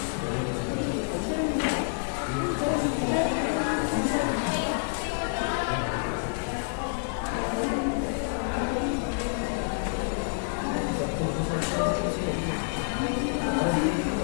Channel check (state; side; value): silent; right; digital silence